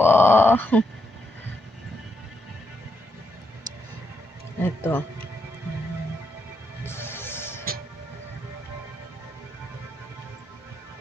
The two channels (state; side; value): normal; both; correlation 0.80